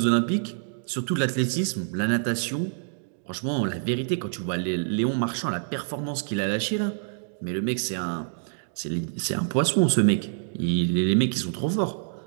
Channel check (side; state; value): left; silent; digital silence